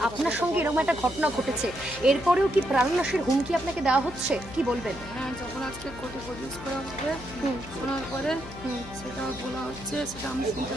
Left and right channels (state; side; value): noise; left; hum, 15 dB below the sound